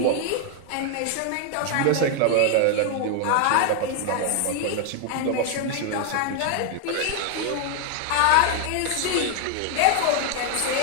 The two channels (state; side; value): different; both; correlation 0.00